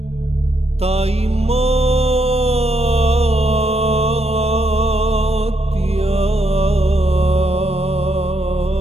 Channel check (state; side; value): late; left; 0.30 ms